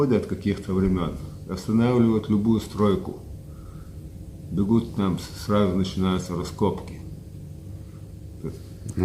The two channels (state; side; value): identical; both; correlation 1.00